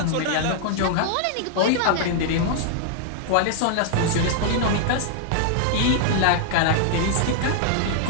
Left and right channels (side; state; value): both; different; correlation -0.01